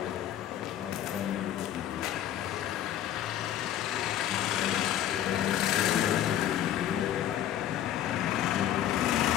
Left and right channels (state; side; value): quieter; right; 11.5 dB